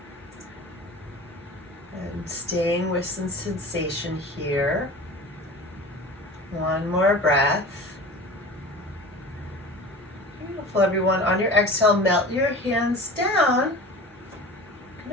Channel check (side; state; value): both; normal; correlation 0.37